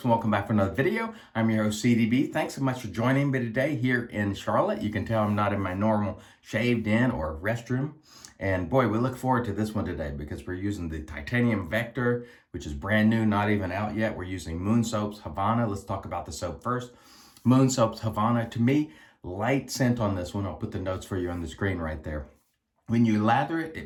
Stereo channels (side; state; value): both; identical; correlation 1.00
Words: and welcome back for another video. I'm your host CDB. Thanks so much for joining me today here in Charlotte. You can tell I'm not in my normal shaved in or restroom. And boy, we look forward to this one today because we're using the titanium Vector, which is brand new, not even out yet. We're using Moon Soap's Havana. Let's talk about the soap first. Moon Soap's Havana, to me, light scent on this one. I'll put the notes for you on the screen right there. When you lather it,